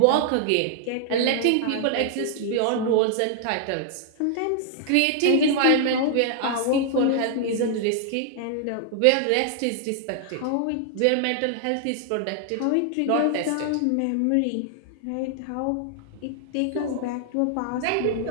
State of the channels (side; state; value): both; different; correlation 0.00